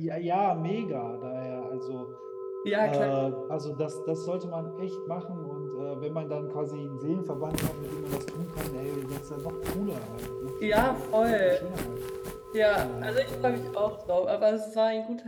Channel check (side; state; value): both; identical; correlation 1.00